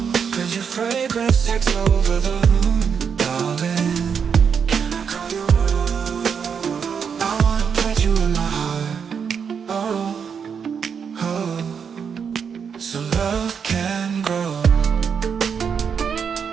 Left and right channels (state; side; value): quieter; left; 6.8 dB